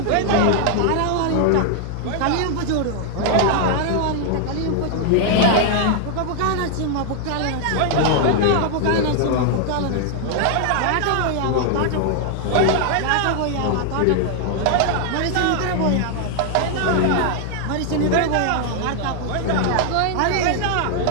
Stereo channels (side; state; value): both; different; correlation 0.00